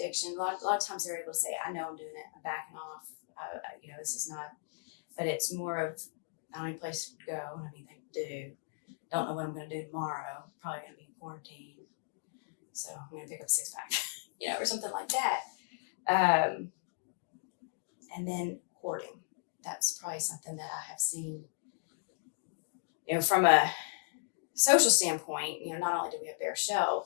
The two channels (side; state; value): right; silent; digital silence